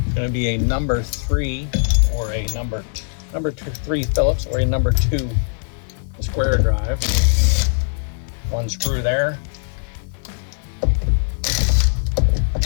going to be a number 3 or a number 3 Phillips or a number 2 square drive. 1 screw there.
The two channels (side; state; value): right; silent; digital silence